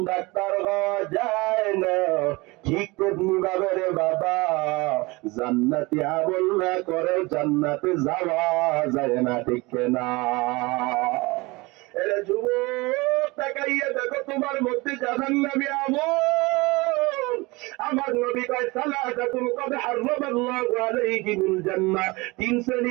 ডাক্তার হওয়া যায় না, ঠিক তেমনি ভাবে রে বাবা জান্নাতি আমল না করে জান্নাতে যাওয়া যায় না, ঠিক না? এরে যুবক, তাকাইয়া দেখো তোমার মধ্যে জাহান্নামী আমল। আমার নবী কয়, সালাতাতুন কদ হারামাল্লাহু আলাইহিমুল জান্নাহ, তিন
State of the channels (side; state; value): left; quieter; 23.9 dB